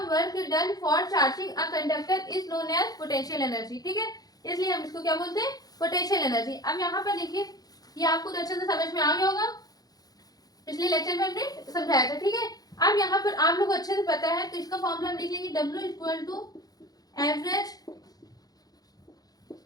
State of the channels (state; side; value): late; right; 0.18 ms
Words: work done for charging a conductor is known as potential energy, ठीक है। इसलिए हम इसको क्या बोलते हैं? Potential energy. अब यहाँ पर देखिए, ये आपको तो अच्छे से समझ में आ गया होगा, पिछले लेक्चर में हमने समझाया था, ठीक है। अब यहाँ पर आप लोग को अच्छे से पता है, तो इसका फॉर्मूला हम लिख लेंगे, W = average